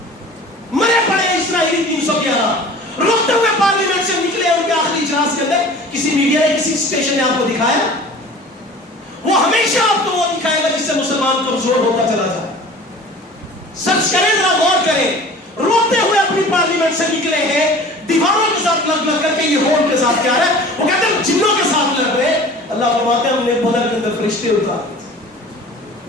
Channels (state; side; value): normal; both; correlation 0.43